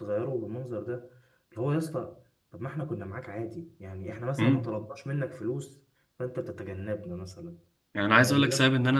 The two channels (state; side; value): identical; both; correlation 1.00